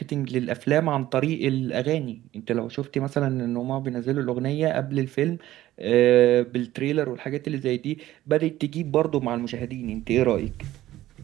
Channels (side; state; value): left; quieter; 14.7 dB